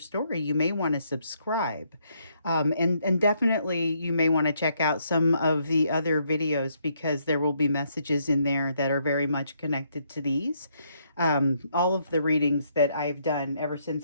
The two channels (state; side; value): inverted; both; correlation -0.73